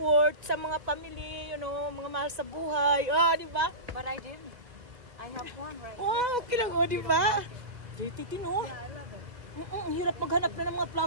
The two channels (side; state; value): left; late; 1.9 ms